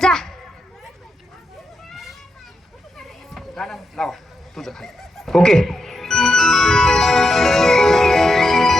जा. गाणं लावा तुझं खाली. ओके.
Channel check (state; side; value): normal; both; correlation 0.85